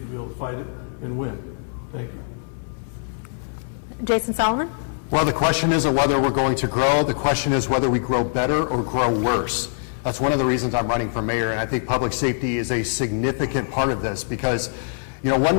be able to fight it and win. Thank you. Jason Salamun? Well, the question isn't whether we're going to grow. The question is whether we grow better or grow worse. That's one of the reasons I'm running for mayor, and I think public safety is a significant part of this because,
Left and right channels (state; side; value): silent; right; 63 dB below the other